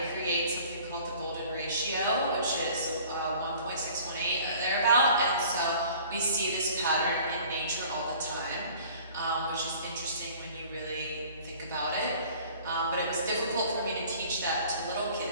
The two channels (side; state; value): both; inverted; correlation -0.49